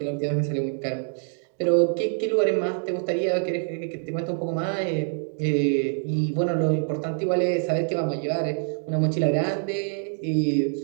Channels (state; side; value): silent; left; 61 dB below the other